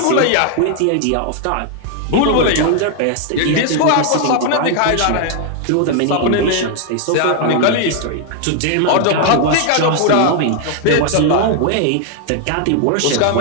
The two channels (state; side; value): different; both; correlation 0.00